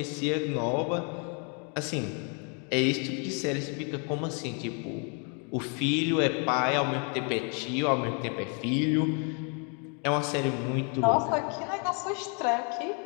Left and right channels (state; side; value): quieter; right; 37.5 dB